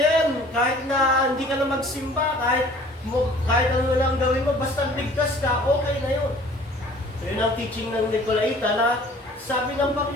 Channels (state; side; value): normal; both; correlation 0.51